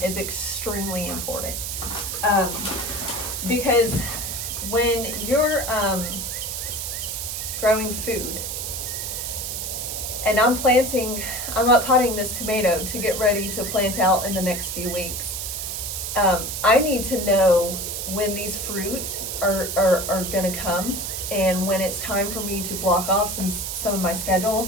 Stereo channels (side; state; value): right; noise; hiss, 4 dB below the sound